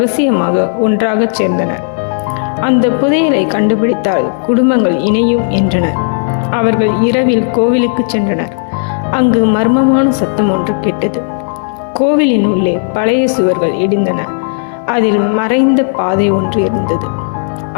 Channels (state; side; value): silent; right; digital silence